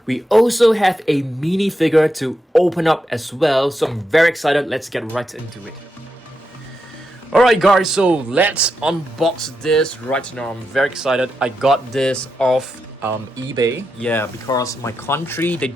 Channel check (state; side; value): normal; both; correlation 0.85